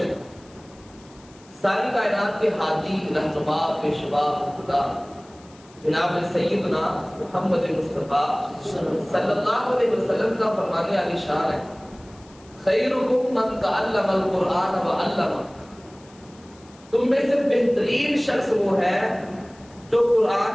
ساری کائنات کے ہادی، رہنما، پیشوا، خدا جناب سیدنا محمد مصطفیٰ صلی اللہ علیہ وسلم کا فرمانے علی شان ہے، خیرکم من تعلم القرآن وعلمہ، تم میں سے بہترین شخص وہ ہے جو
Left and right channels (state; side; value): noise; left; hiss, 27 dB below the sound